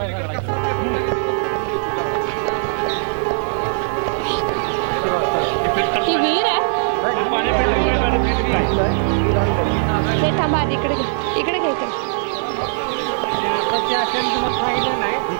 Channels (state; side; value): silent; left; 56 dB below the other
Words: सगळा. ही विहीर आहे. हे थांबा आधी इकडे घे. इकडे घे इकडे.